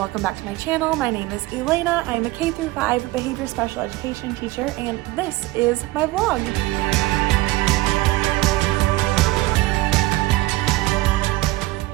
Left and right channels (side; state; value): left; quieter; 19.3 dB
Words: back to my channel. My name is Elena. I am a K-5 behavior special education teacher and this is my vlog.